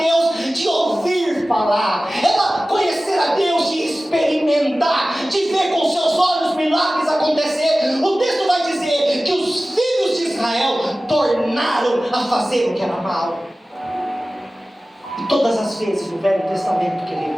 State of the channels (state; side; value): normal; both; correlation 0.96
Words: de ouvir falar, era conhecer a Deus de experimentar, de ver com seus olhos milagres acontecer. O texto vai dizer que os filhos de Israel tornaram a fazer o que era mal. E todas as vezes no Velho Testamento,